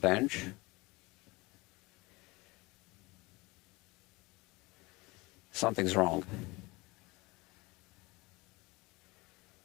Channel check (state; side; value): quieter; right; 23.5 dB